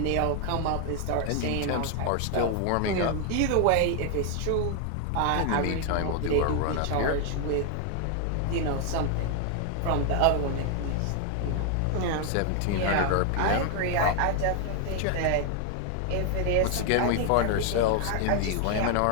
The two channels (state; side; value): different; both; correlation 0.00